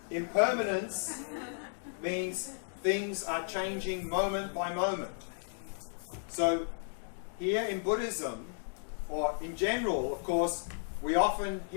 it? Impermanence means things are changing moment by moment. So here in Buddhism, or in general, of course, we often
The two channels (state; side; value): silent; right; digital silence